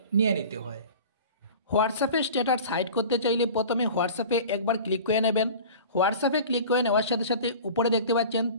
নিয়ে নিতে হয়। হোয়াটসঅ্যাপে স্ট্যাটাস হাইড করতে চাইলে প্রথমে হোয়াটসঅ্যাপে একবার ক্লিক করে নেবেন। হোয়াটসঅ্যাপে ক্লিক করে নেওয়ার সাথে সাথে উপরে দেখতে পাচ্ছেন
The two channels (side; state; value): both; inverted; correlation -0.38